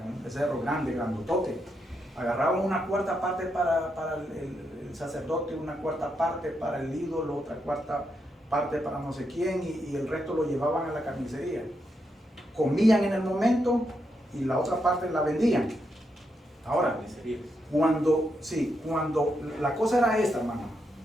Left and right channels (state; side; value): normal; both; correlation 0.82